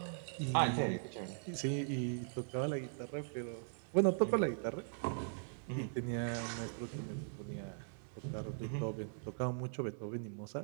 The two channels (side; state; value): left; silent; digital silence